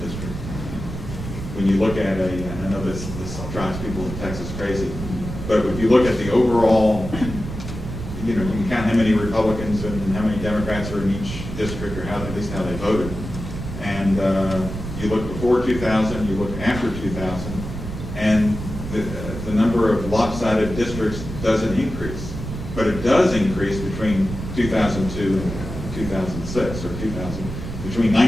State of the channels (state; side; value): noise; right; rumble, 8 dB below the sound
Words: districts. When you look at and I know this drives people in Texas crazy, but if you look at the overall, you can count how many Republicans and how many Democrats are in each district, or at least how they voted. And you look before 2000, you look after 2000, and the number of lopsided districts doesn't increase. But it does increase between 2002 and 2006, or between